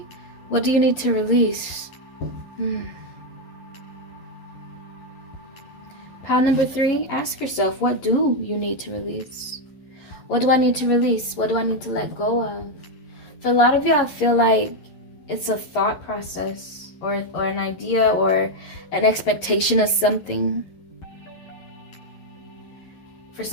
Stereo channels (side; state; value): right; late; 11 ms